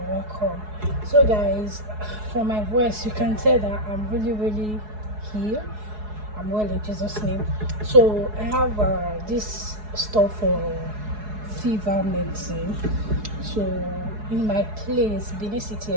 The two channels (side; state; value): left; late; 4.7 ms